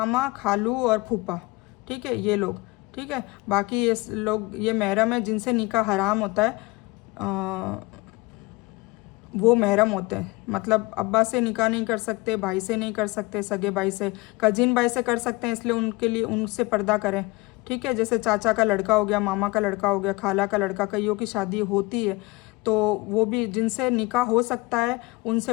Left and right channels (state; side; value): quieter; right; 23.7 dB